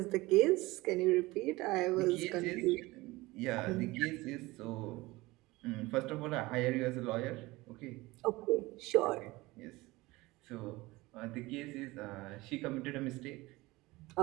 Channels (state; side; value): quieter; left; 20.8 dB